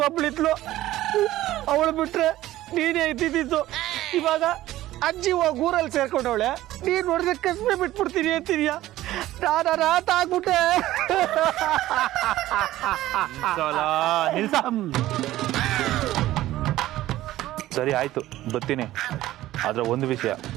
ಅವಳು ಬಿಟ್ರೆ ನೀನೇ ಇದ್ದಿದ್ದು. ಇವಾಗ ಅಜ್ಜಿ ಹೋಗಿ ಊರಲ್ಲಿ ಸೇರ್ಕೊಂಡವಳೆ, ನೀನ್ ನೋಡಿದ್ರೆ ಕಸ್ಬೆ ಬಿಟ್ಬಿಡ್ತೀನಿ ಅಂತಿದ್ಯಾ? ನಾನು ರಾತ ಆಗ್ಬಿಟ್ಟೆ. ಸರಿ ಆಯ್ತು, ಬರ್ತೀನಿ. ಆದ್ರೆ ಒಂದು ವಿಷಯ,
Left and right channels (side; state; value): left; quieter; 15.2 dB